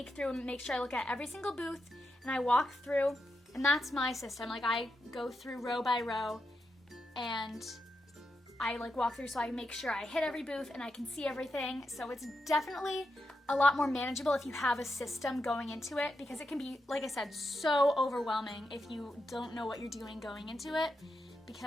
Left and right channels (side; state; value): both; normal; correlation 0.86